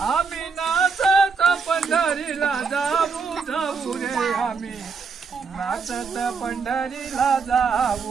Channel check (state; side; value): quieter; left; 5.3 dB